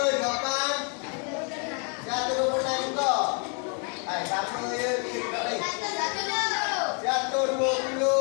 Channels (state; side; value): quieter; right; 39.4 dB